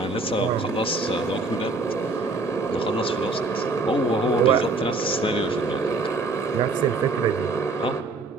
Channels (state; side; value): quieter; left; 3.5 dB